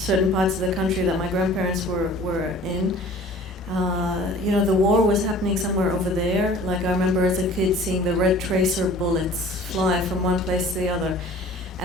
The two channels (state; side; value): normal; both; correlation 0.47